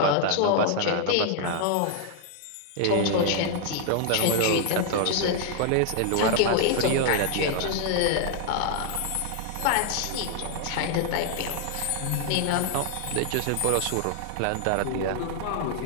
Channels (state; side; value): different; both; correlation 0.00